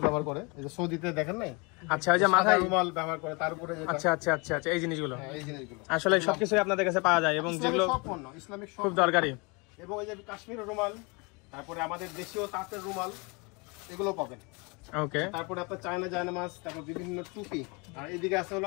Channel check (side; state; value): right; quieter; 29.4 dB